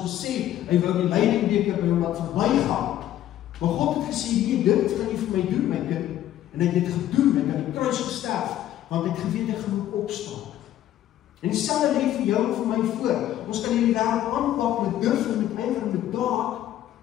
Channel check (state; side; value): quieter; right; 12.5 dB